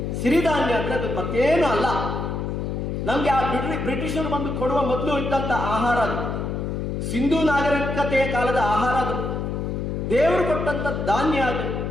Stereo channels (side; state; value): left; noise; hum, 3 dB below the sound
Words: ಸಿರಿಧಾನ್ಯ ಅಂದ್ರೆ ಅದು ಮತ್ತೇನು ಅಲ್ಲ. ನಮ್ಗೆ ಆ ಬ್ರಿಟಿಷರು ಬಂದು ಕೊಡುವ ಮೊದಲು ಇದ್ದಂತ ಆಹಾರ ಅದು. ಸಿಂಧೂ ನಾಗರಿಕತೆಯ ಕಾಲದ ಆಹಾರ ಅದು. ದೇವರು ಕೊಟ್ಟಂತ ಧಾನ್ಯ ಅದು.